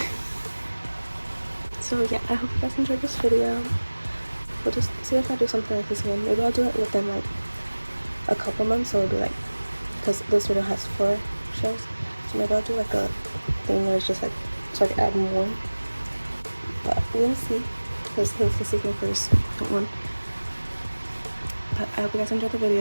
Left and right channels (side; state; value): both; inverted; correlation -1.00